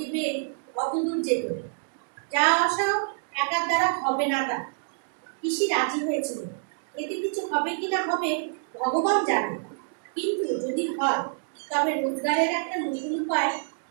পেয়ে অত দূর যেত। যা আসাও একার দ্বারা হবে না তার। পিসি রাজি হয়েছিল। এতে কিছু হবে কি না হবে ভগবান জানে, কিন্তু যদি হয় তবে রোজগারের একটা নতুন উপায়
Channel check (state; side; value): silent; left; digital silence